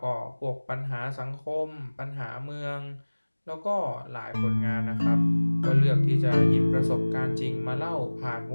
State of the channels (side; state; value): both; inverted; correlation -1.00